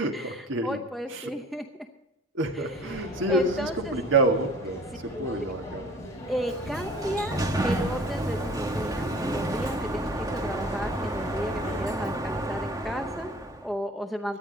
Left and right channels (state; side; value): normal; both; correlation 0.47